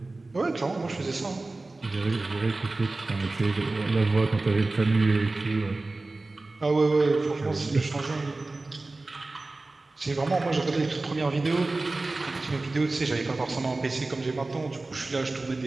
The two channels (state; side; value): quieter; left; 3.2 dB